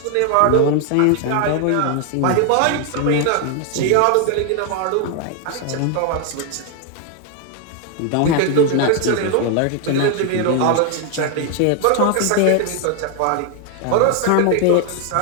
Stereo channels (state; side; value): different; both; correlation 0.01